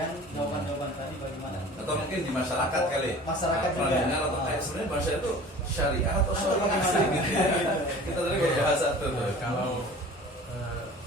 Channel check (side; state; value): both; normal; correlation 0.43